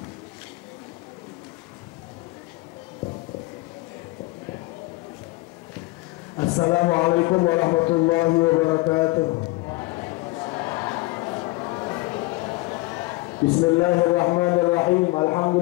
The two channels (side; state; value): right; quieter; 21.7 dB